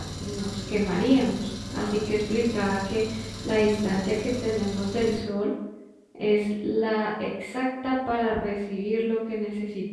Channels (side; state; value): both; identical; correlation 1.00